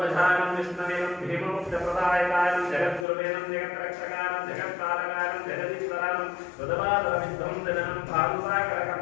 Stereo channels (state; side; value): drops out; right; at 3.1 s